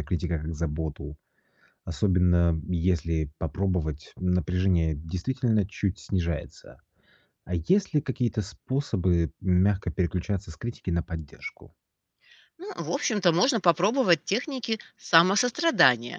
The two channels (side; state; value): both; identical; correlation 1.00